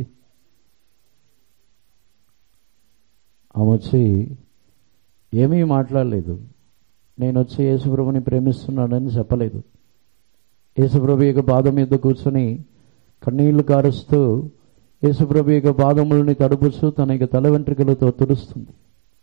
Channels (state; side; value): silent; left; digital silence